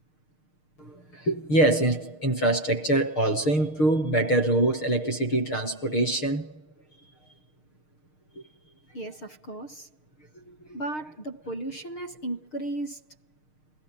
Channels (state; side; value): late; right; 6.5 ms